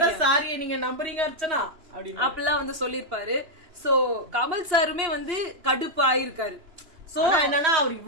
சாரியை நீங்க நம்புறீங்க அர்ச்சனா அப்படிலாம் சொல்லிருப்பாரு. சோ கமல் சாருமே கடுப்பு ஆயிருக்காரு. சோ என்னன்னா அவர்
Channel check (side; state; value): left; late; 2.9 ms